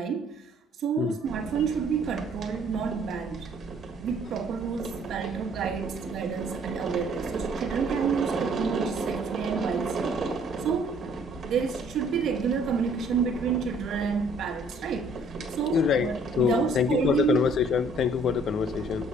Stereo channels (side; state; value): both; normal; correlation 0.60